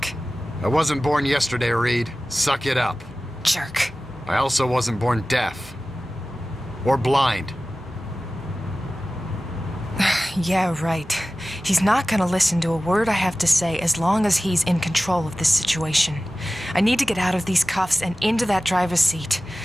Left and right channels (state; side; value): normal; both; correlation 0.96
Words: I wasn't born yesterday, Reed. Suck it up. Jerk. I also wasn't born deaf. Or blind. Yeah, right. He's not gonna listen to a word I have to say as long as he's in control of this situation. I need to get out of these cuffs and into that driver's seat.